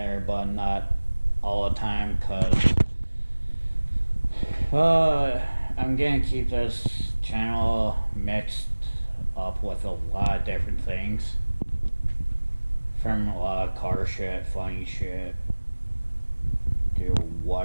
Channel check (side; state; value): both; inverted; correlation -1.00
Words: but not all the time, because I'm gonna keep this channel mixed up with a lot of different things, from a lot of car shit, funny shit, to